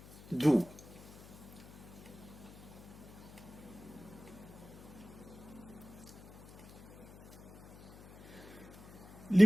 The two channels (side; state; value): left; noise; hum, 19 dB below the sound